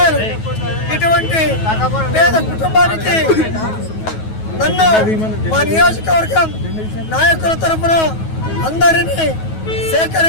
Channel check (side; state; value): right; late; 9.3 ms